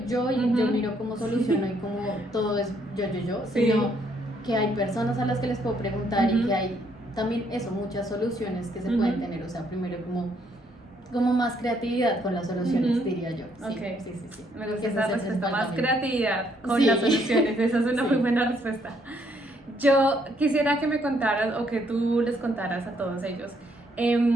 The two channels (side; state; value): both; normal; correlation 0.70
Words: yo y yo Ujú. miro cómo soluciono y cómo todo es yo, Sí. sino que hay personas a las que les puedo preguntar y Ujú. que hay también eso, muchas soluciones que se Ujú. pueden tener. O sea, primero como más creatividad con las soluciones, Ujú. diría yo. Sí, Ok. sí. Me Creo gusta que ese esa es el respuesta, principal más cambio. creatividad con Sí. las soluciones, esa es una Sí. muy buena respuesta. Yo quisiera que me contaras o que tú les contaras a todos ellos,